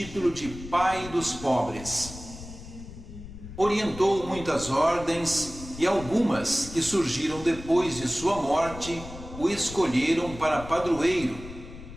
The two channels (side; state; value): left; noise; rumble, 14 dB below the sound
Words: de Pai dos Pobres. Orientou muitas ordens e algumas que surgiram depois de sua morte o escolheram para padroeiro,